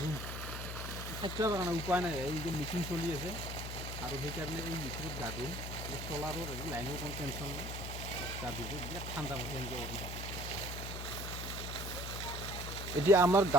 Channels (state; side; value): noise; left; hum, 6 dB below the sound